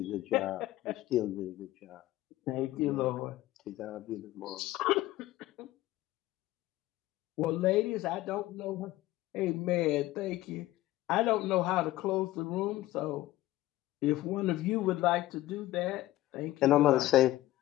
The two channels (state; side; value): quieter; right; 16.2 dB